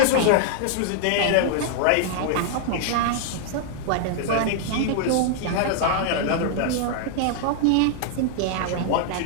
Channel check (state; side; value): different; both; correlation -0.01